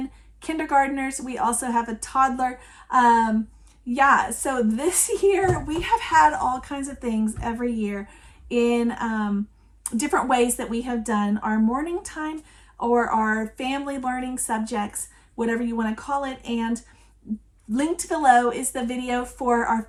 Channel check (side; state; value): both; identical; correlation 1.00